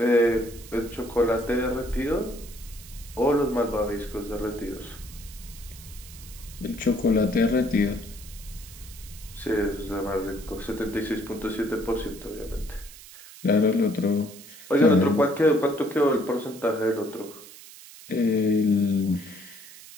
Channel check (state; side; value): noise; right; hiss, 18 dB below the sound